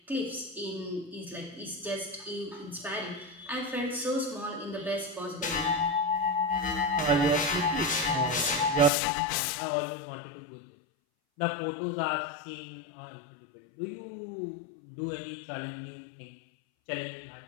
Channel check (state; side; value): drops out; right; at 8.9 s